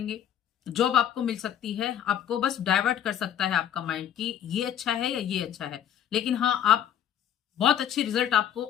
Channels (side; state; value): right; quieter; 10.0 dB